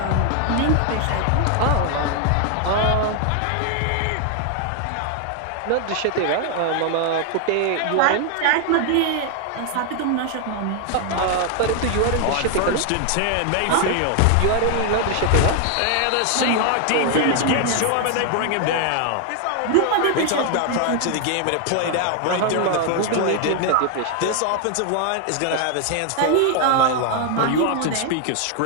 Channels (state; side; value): different; both; correlation 0.00